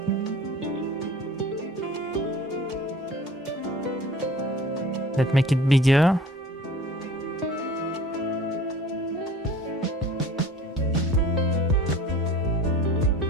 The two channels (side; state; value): both; normal; correlation 0.45